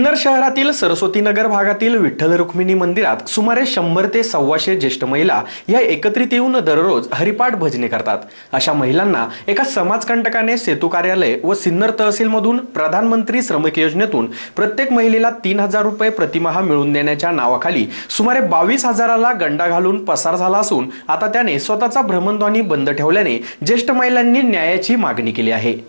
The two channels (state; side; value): inverted; both; correlation -1.00